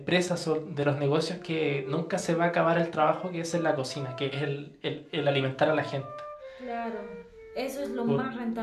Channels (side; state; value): both; identical; correlation 1.00